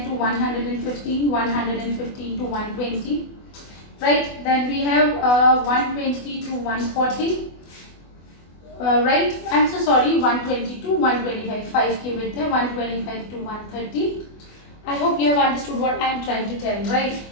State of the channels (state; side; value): late; right; 24 ms